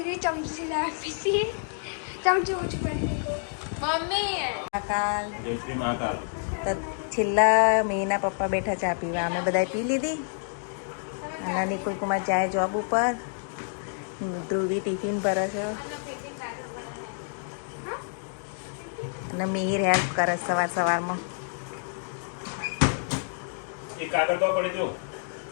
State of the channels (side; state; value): right; silent; digital silence